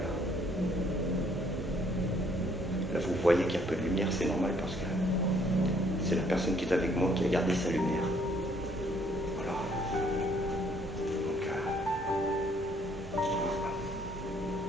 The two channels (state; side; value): normal; both; correlation 0.64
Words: Là, vous voyez qu'il y a un peu de lumière, c'est normal parce que c'est la personne qui est avec moi qui a gardé sa lumière. Voilà. Donc, voilà.